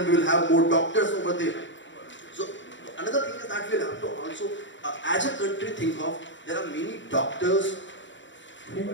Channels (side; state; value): right; late; 0.54 ms